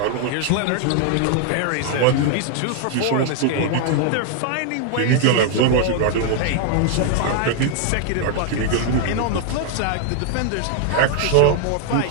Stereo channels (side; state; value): both; different; correlation 0.00